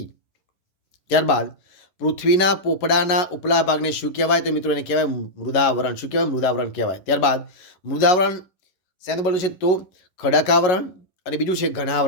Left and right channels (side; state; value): right; late; 11 ms